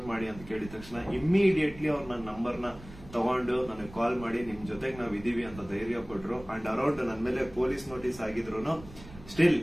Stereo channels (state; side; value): noise; right; rumble, 18 dB below the sound